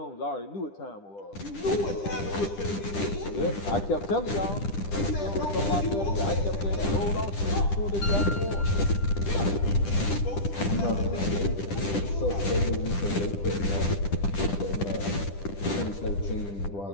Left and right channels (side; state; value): right; late; 10 ms